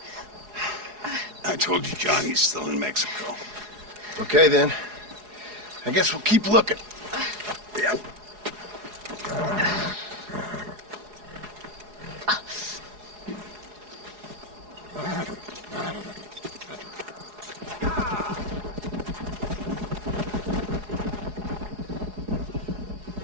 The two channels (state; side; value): late; left; 4.8 ms